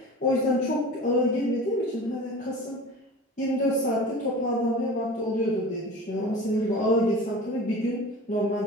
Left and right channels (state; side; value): normal; both; correlation 0.36